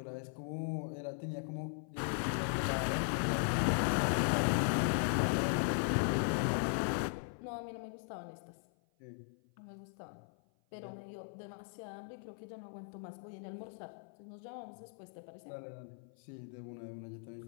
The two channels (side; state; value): right; silent; 52 dB below the other